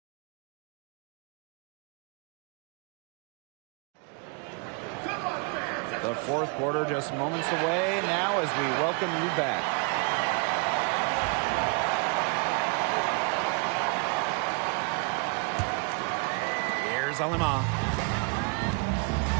The fourth quarter just moments away now as we welcome you back. Here's Alemán.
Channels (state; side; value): quieter; left; 35.8 dB